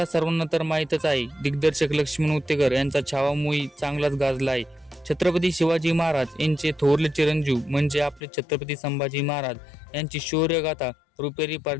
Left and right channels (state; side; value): drops out; right; at 8.2 s